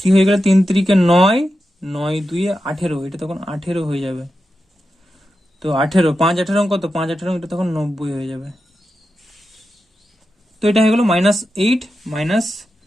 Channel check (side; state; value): both; normal; correlation 0.90